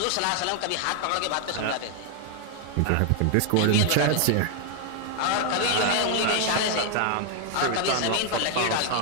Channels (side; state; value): both; different; correlation 0.00